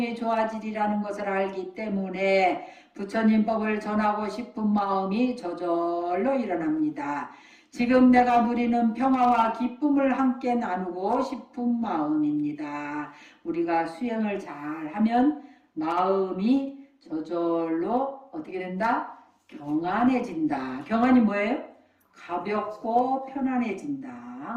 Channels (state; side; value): identical; both; correlation 1.00